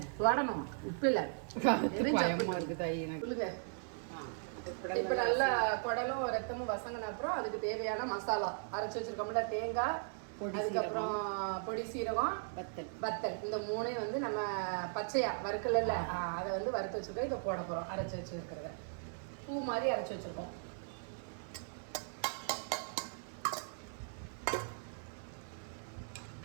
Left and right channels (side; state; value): left; silent; 53 dB below the other